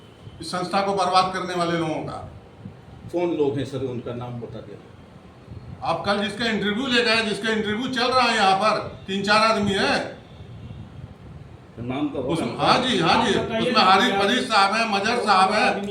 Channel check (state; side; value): identical; both; correlation 1.00